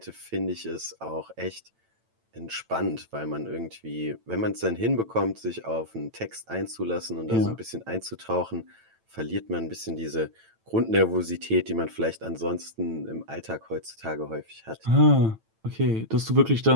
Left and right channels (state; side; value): late; left; 9.0 ms